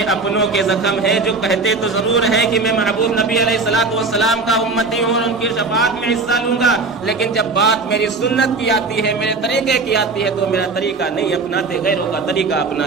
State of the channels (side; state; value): left; quieter; 3.9 dB